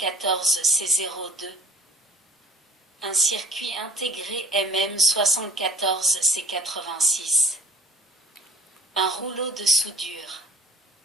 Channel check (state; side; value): normal; both; correlation 0.51